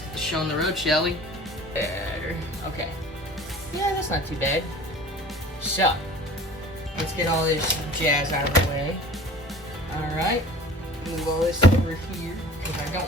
get the show on the road, shall we? Okay, yeah, that's not too bad. So, let's get all this jazz out of the way. Alright, move all this over here, because I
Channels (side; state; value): both; normal; correlation 0.44